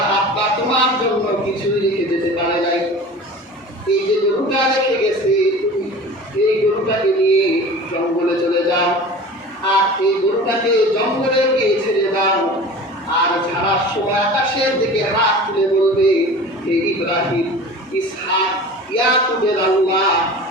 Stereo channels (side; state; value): both; normal; correlation 0.38